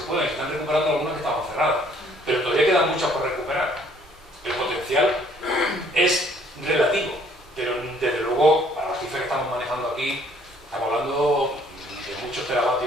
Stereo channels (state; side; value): normal; both; correlation 0.61